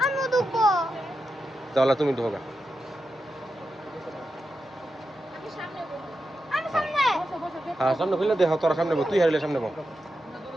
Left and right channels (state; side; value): normal; both; correlation 0.88